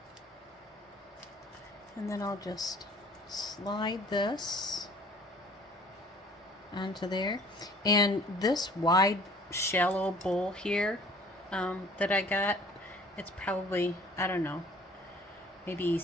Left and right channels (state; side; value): normal; both; correlation 0.52